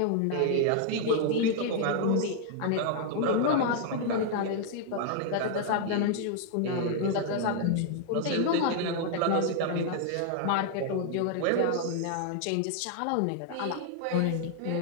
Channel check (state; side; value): different; both; correlation 0.00